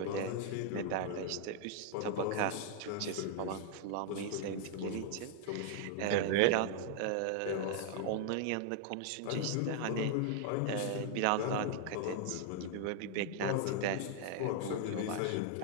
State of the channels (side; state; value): both; different; correlation 0.00